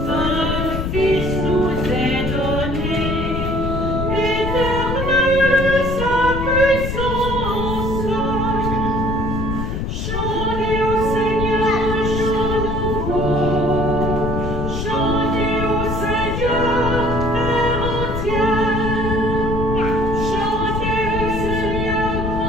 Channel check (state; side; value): noise; left; rumble, 2 dB below the sound